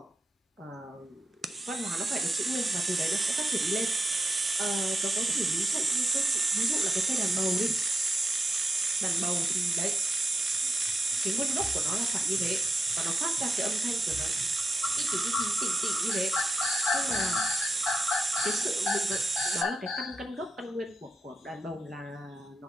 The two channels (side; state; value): both; normal; correlation 0.87